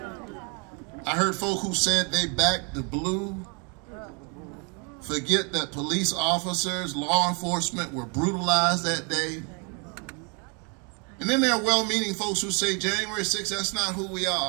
I heard folk who said they backed the blue, forget that police officers, law enforcement were brutalized that day. And then there are well-meaning folks who say January 6th, that's not who we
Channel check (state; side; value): quieter; left; 35.0 dB